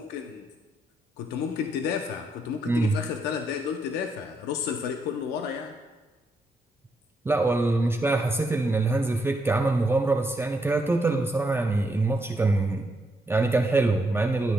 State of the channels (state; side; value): normal; both; correlation 0.78